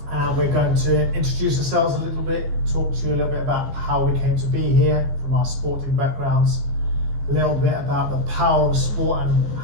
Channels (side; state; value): left; late; 15 ms